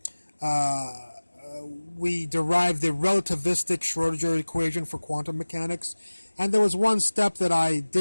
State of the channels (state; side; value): inverted; both; correlation -1.00